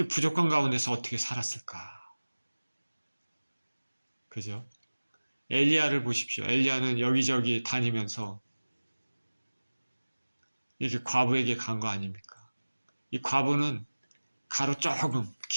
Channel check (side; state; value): both; inverted; correlation -1.00